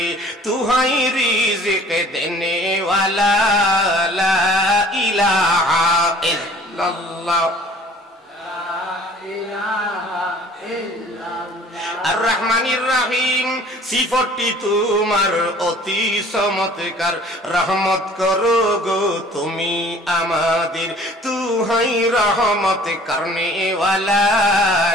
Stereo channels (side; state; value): both; normal; correlation 0.51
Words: তুহাই রিজিক দেনে ওয়ালা, লা ইলাহা ইল্লাল্লাহ। আর রহমানির রহিম, সিফতটি তোমার অতি চমৎকার, রহমত করো গো তুমি আমাদের, তুহাই রহমত করনে ওয়ালা,